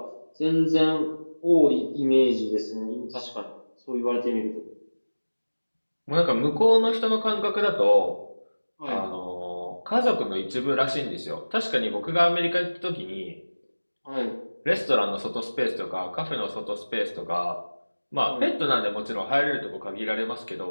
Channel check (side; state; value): both; inverted; correlation -1.00